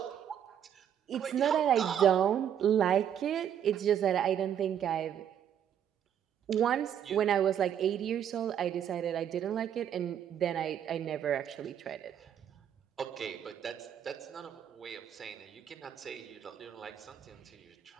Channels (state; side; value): quieter; left; 9.3 dB